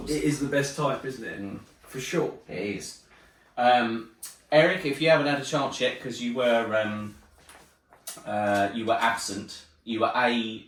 It is the best type, isn't it? Mm. For sure. It is. Eric, if you haven't had a chance yet, because you were absent, you were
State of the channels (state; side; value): identical; both; correlation 1.00